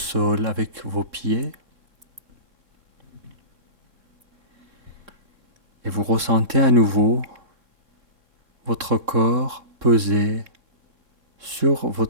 avec vos pieds. Et vous ressentez à nouveau votre corps peser sur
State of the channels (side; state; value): left; late; 3.7 ms